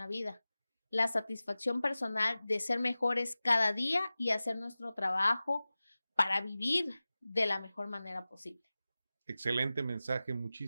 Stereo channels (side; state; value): both; inverted; correlation -0.97